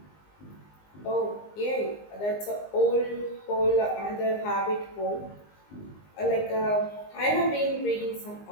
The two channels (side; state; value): right; late; 19 ms